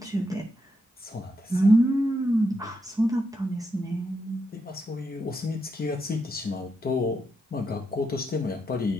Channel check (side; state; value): both; normal; correlation 0.82